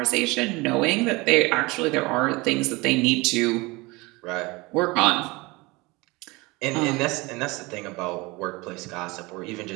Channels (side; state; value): left; quieter; 23.9 dB